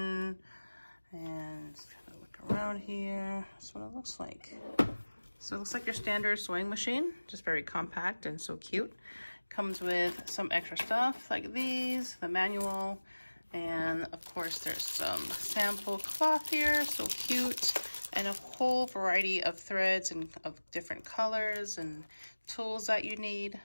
and just kind of look around here. That's what it looks like. So it looks like your standard sewing machine, just very compact and so cute. Comes with some extra stuff like these, the manual, and of course there's some sample cloth here, so cute, and a whole variety of threads and of different colors and tools that you need.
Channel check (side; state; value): both; inverted; correlation -1.00